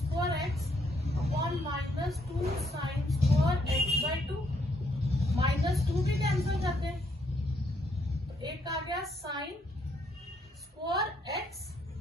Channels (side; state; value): both; normal; correlation 0.72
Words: x upon minus 2 sine square x by 2, minus 2 भी कैंसिल करते हैं, तो एक आ गया साइन स्क्वायर एक्स